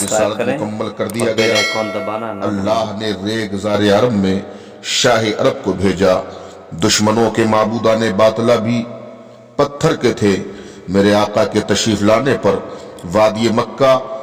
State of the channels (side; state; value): both; identical; correlation 1.00